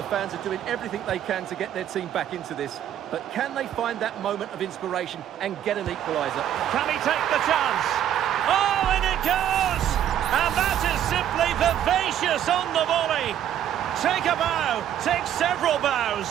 fans are doing everything they can to get their team back into this. But can they find that moment of inspiration and get an equaliser? Can he take the chance? Oh, and it goes! And that is simply vivacious on the volley. Take a bow, take several bows.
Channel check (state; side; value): quieter; left; 10.6 dB